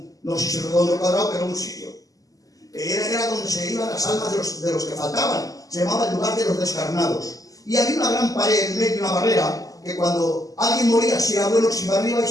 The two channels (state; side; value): late; right; 0.17 ms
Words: no sé si es redondo o cuadrado, pero un sitio. Era donde se iban las almas de los que faltaban. Se llamaba el lugar de los descarnados. Y había una gran pared en medio, una barrera, que cuando alguien moría, si era bueno, se iba arriba, y